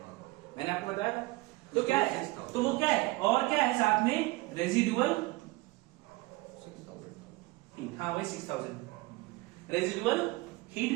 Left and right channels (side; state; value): left; quieter; 21.5 dB